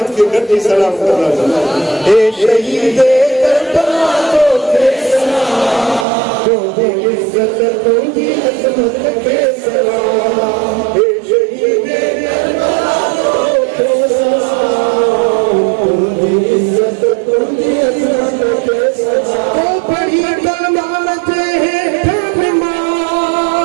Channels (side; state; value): left; drops out; at 6.1 s